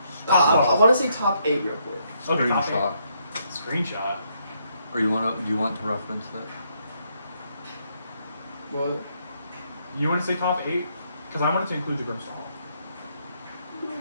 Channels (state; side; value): inverted; both; correlation -0.74